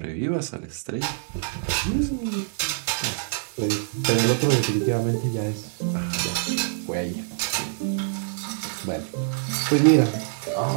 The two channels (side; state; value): left; silent; 62 dB below the other